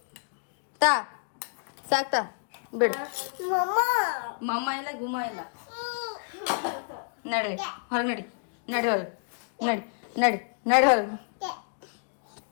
ತಾ ಸಾಕ್ತಾ ಬಿಡು. ಮಮ್ಮ ಇಲ್ಲ ಗುಮ್ಮ ಇಲ್ಲ. ನಡಿ ಹೊರಗೆ ನಡಿ ನಡಿ ಹೊರಗೆ ನಡಿ ನಡಿ ನಡಿ ಹೊರಗೆ.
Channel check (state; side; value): silent; right; digital silence